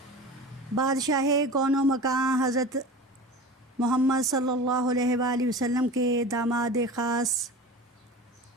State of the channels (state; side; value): normal; both; correlation 0.34